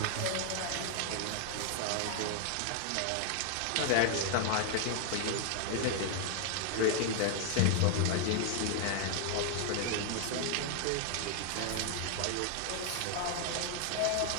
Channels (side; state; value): both; different; correlation 0.00